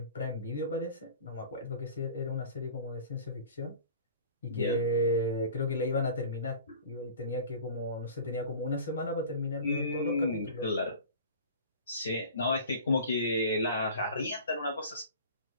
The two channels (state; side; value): inverted; both; correlation -0.42